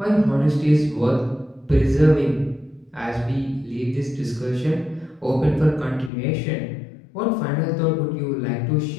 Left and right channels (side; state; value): right; drops out; at 6.1 s